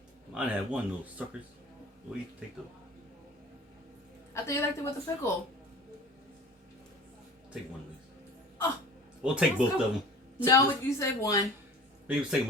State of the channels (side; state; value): both; normal; correlation 0.42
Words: Mine had 1, little suckers. What do you take those? I thought you liked it with the pickle. Take 1 of these. Oh. We'll take both of them. No, you said 1. Maybe let's take